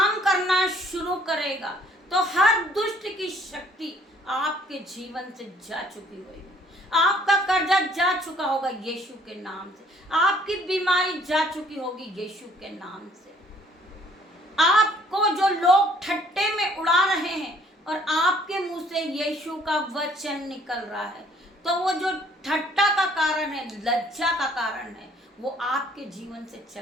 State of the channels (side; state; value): both; normal; correlation 0.60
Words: करना शुरू करेगा तो हर दुष्ट की शक्ति आपके जीवन से जा चुकी होगी। आपका कर्जा जा चुका होगा यीशु के नाम से, आपकी बीमारी जा चुकी होगी यीशु के नाम से। आपको जो लोग ठट्टे में उड़ा रहे हैं और आपके मुंह से यीशु का वचन निकल रहा है, तो वो जो ठट्टा का कारण है, लज्जा का कारण है, वो आपके जीवन से